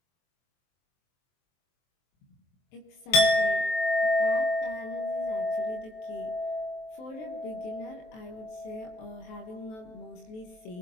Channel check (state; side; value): late; right; 23 ms